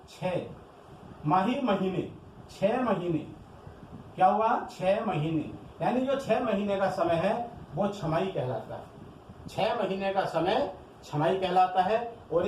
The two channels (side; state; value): both; identical; correlation 1.00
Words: 6 माही महीने, 6 महीने क्या हुआ, 6 महीने, यानी जो 6 महीने का समय है वो छमाही कहलाता है। 6 महीने का समय छमाही कहलाता है। और